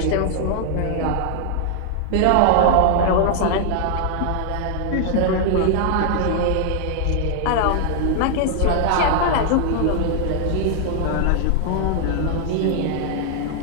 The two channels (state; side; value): different; both; correlation 0.00